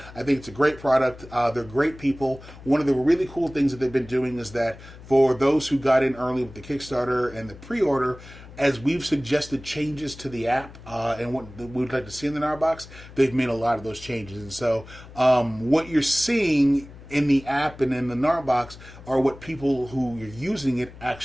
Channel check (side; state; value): left; noise; hum, 18 dB below the sound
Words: think it's a great product. They're great people. One of the really cool things that they've been doing is that for those who got in early with the Kickstarter and the pre-order, as we've suggested changes to the app and what we'd like to see in the Gnarbox, they've made a lot of those changes. And so what you're seeing in the app and in the Gnarbox are what people who are using it